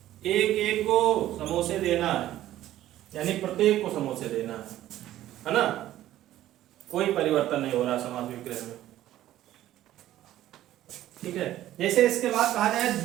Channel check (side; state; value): left; quieter; 13.6 dB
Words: एक एक को समोसे देना है, यानी प्रत्येक को समोसे देना है ना। कोई परिवर्तन नहीं हो रहा समास विग्रह में, ठीक है। जैसे इसके बाद कहा जाए